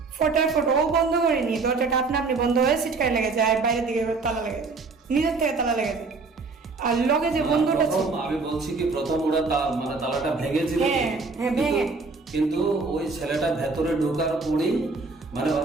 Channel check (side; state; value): left; quieter; 4.1 dB